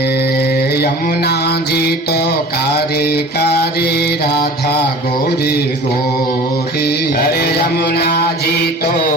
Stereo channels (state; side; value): normal; both; correlation 0.41